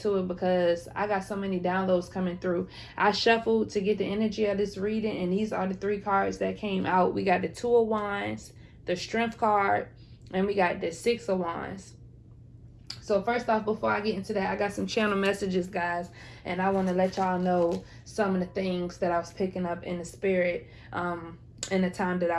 it because I got so many downloads coming through. I shuffled to get the energy of this reading, and these are the three cards that came out. We got the Two of Wands, the Strength card, and we got the Six of Wands. So first off, before I get into that, I got some channel messages, guys, and I want to let y'all know some of the things that I was picking up in the spirit in the time that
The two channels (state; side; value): identical; both; correlation 1.00